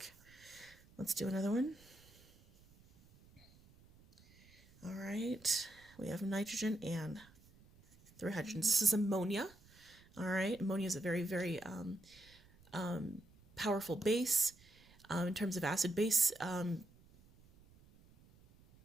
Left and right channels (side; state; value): right; noise; rumble, 26 dB below the sound